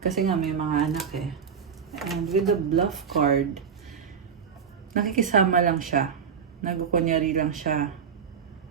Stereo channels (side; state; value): left; quieter; 6.9 dB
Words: kasi nga may mga anak eh. And with the bluff card, nakikisama lang siya. Nagkukunyari lang siya.